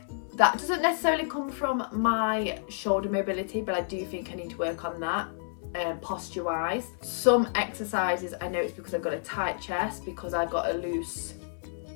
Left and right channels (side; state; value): right; silent; 57 dB below the other